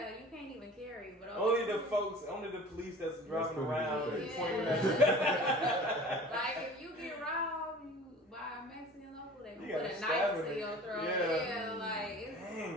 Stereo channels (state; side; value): normal; both; correlation 0.43